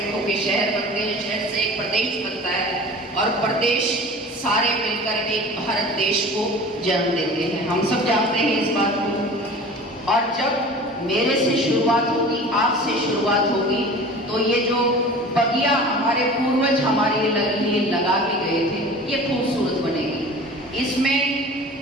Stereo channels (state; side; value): normal; both; correlation 0.40